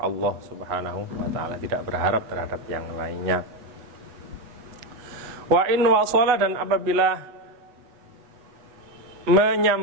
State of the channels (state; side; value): late; left; 8.0 ms